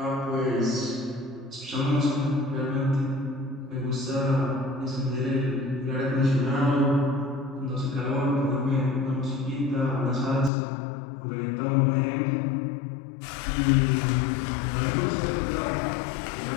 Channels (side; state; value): right; drops out; at 10.5 s